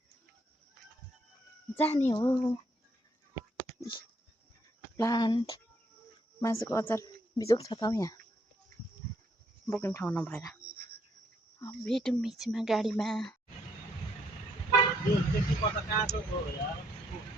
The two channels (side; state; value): both; normal; correlation 0.71